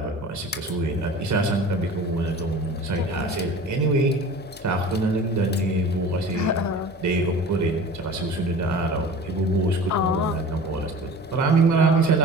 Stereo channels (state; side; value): normal; both; correlation 0.39